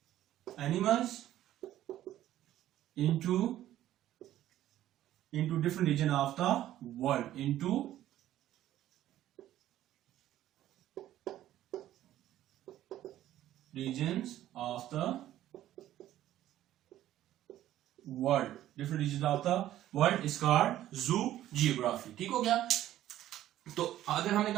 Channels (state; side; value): quieter; left; 13.1 dB